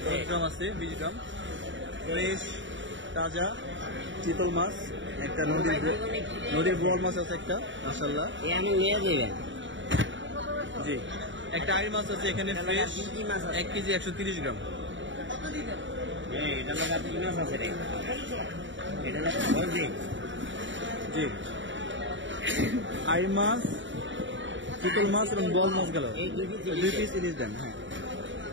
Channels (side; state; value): left; late; 0.55 ms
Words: 10 গ্রাম আছে 20 গ্রাম, ফ্রেশ তাজা চিতল মাছ। একটা নদীর বোয়াল মাছ আছে একটা মাশাআল্লাহ। জি, একটা আইর মাছ আছে এখানে ফ্রেশ 1 কেজি 130 গ্রাম। জি, আইর মাছ, চিতল মাছ এবং বল মাছ গেল 2 পিস ইলিশ দেন। হ্যাঁ,